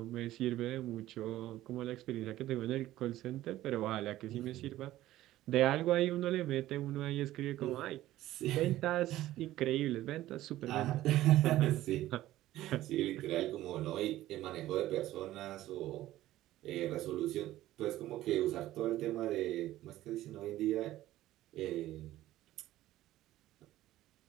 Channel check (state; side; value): quieter; left; 14.9 dB